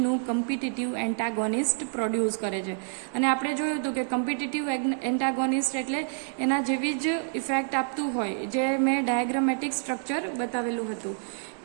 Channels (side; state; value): left; silent; 59 dB below the other